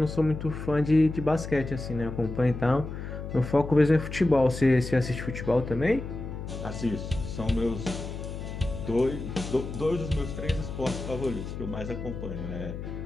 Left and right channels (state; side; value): noise; left; hum, 8 dB below the sound